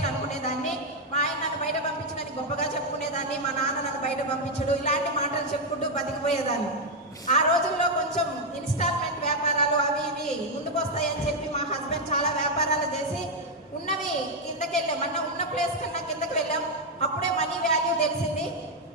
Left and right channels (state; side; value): normal; both; correlation 0.01